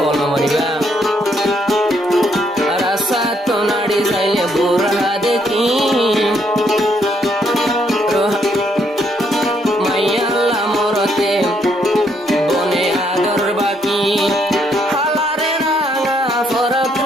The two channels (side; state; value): both; normal; correlation 0.72